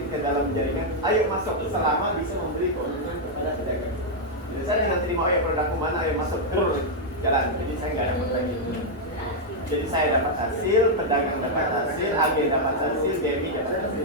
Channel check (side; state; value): both; normal; correlation -0.02